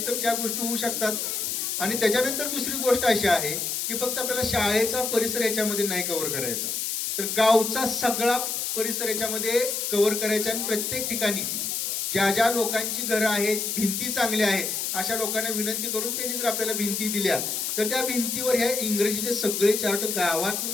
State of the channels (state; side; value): noise; left; hiss, 1 dB below the sound